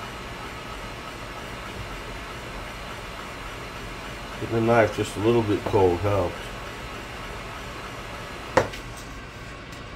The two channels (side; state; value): both; identical; correlation 1.00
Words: Getting the knife just a little bit cold helps.